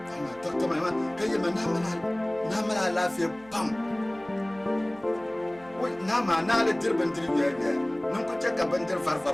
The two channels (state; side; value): noise; right; hum, 25 dB below the sound